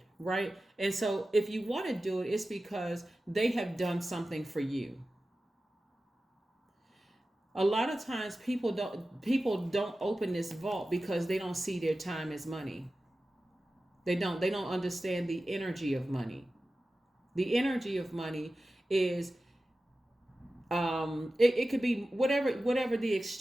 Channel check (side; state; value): both; normal; correlation 0.94